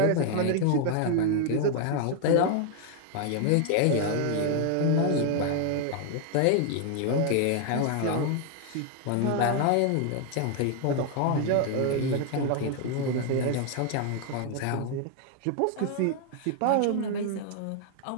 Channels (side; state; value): both; different; correlation 0.00